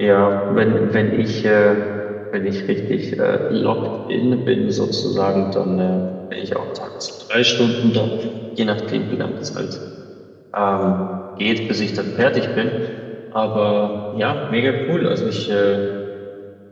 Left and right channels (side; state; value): both; identical; correlation 1.00